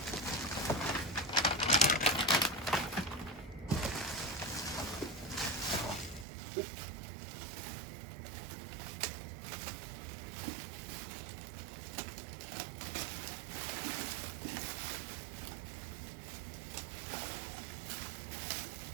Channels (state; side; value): drops out; left; at 6.2 s